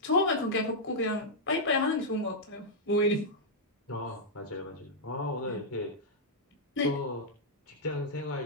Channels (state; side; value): normal; both; correlation -0.07